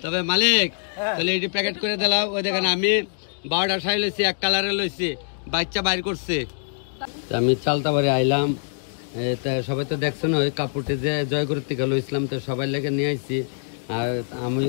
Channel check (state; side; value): silent; right; digital silence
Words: তবে মালিক তাহলে এটি প্যাকেট করে দিলাম, ওই দেখেন আমি 12টা শাড়ি লইছি, এক কালারে লইছি, বাচ্চা বাইর করছে। আমি চালতা বাড়ি আইলাম, তা সবাই তো দেখছেন ওই কাপড়টি যে জয়গুরুর থেকে লইছিলাম, তো সবাই লেগে নিয়ে আইছি। আর আমি